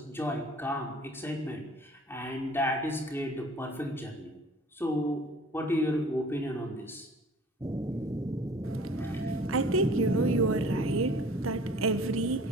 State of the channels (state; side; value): normal; both; correlation 0.49